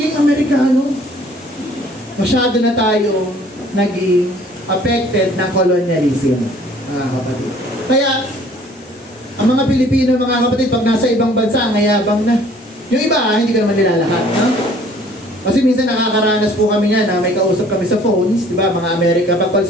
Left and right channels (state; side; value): normal; both; correlation 0.55